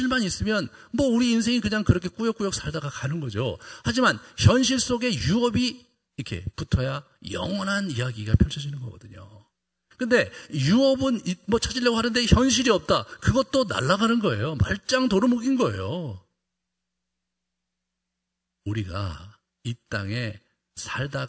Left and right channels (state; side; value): identical; both; correlation 1.00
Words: 있으면 우리 인생이 그냥 그렇게 꾸역꾸역 살다가 가는 거죠. 하지만 현실 속에 유업이 이렇게 붙어야 영원한 이야기가 펼쳐지는 거거든요. 근데 유업은 찾으려고 하는데 현실이 없다. 그것도 날아가는 거예요. 말짱 도루묵인 거예요. 우리가 이 땅에 살다